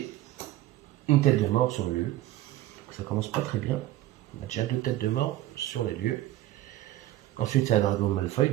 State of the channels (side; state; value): left; quieter; 14.7 dB